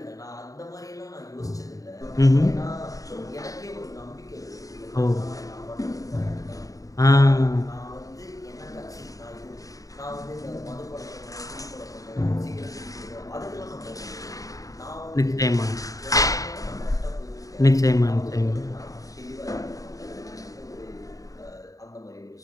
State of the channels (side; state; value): right; late; 0.17 ms